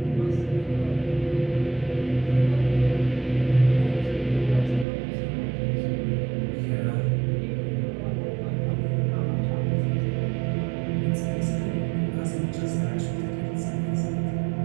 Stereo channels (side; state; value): left; drops out; at 4.9 s